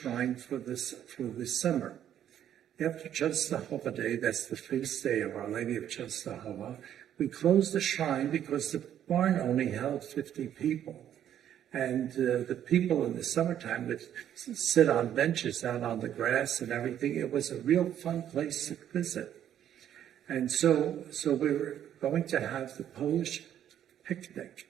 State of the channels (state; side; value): quieter; left; 10.4 dB